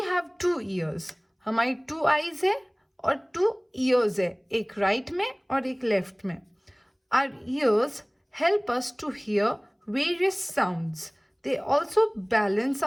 have 2 ears. हमारी 2 आईज है और 2 ईयर्स है, एक राइट में और एक लेफ्ट में. Our ears help us to hear various sounds. They also balance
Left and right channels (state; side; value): identical; both; correlation 1.00